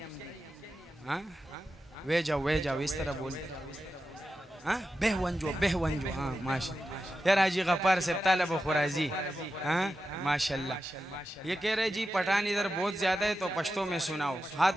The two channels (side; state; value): both; normal; correlation 0.90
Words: हाँ, वे जाओ इस तरह बोलते। हाँ, बेहवंजो। हाँ, माशाल्लाह। यार हाजी गफ्फार से तालब खुराजी। हाँ, माशाल्लाह। ये कह रहे जी पठान इधर बहुत ज्यादा है, तो पश्तो में सुनाओ।